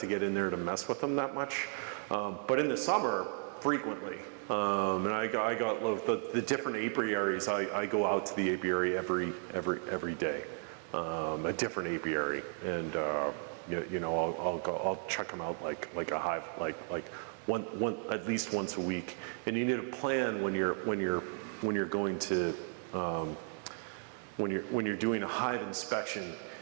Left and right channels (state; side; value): silent; left; 55 dB below the other